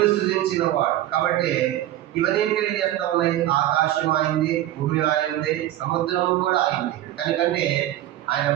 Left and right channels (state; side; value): quieter; left; 13.7 dB